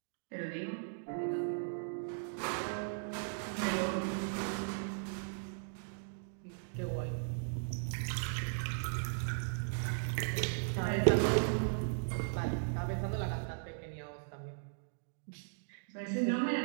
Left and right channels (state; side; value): silent; left; digital silence